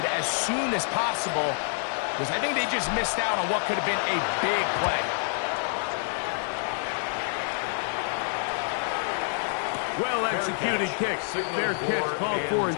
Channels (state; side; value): silent; right; 60 dB below the other